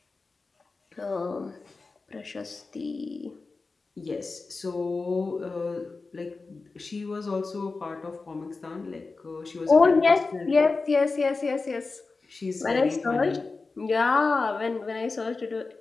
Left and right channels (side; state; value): right; quieter; 3.9 dB